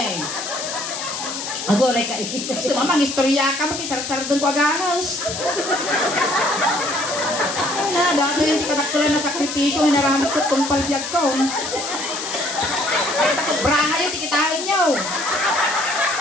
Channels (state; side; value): noise; left; hiss, 6 dB below the sound